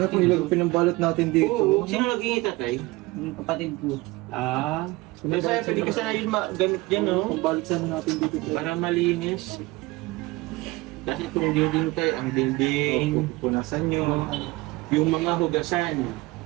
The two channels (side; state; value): left; quieter; 21.8 dB